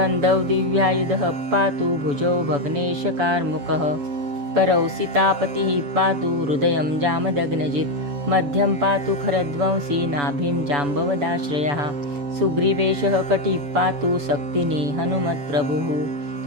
दिव्यायुधः पातु भुजौ भग्नेशकार्मुकः करौ सीतापतिः पातु हृदयं जामदग्नजित् मध्यं पातु खरध्वंसी नाभिं जाम्बवदाश्रयः सुग्रीवेशः कटिः पातु शक्तिनी हनुमत्प्रभुः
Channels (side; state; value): left; late; 7.0 ms